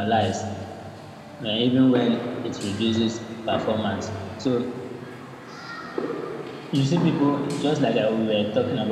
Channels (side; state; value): both; identical; correlation 1.00